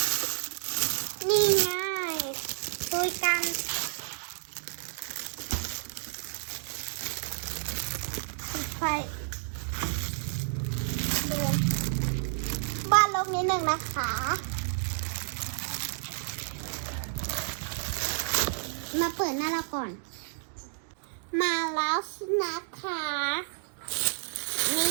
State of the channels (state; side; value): silent; left; digital silence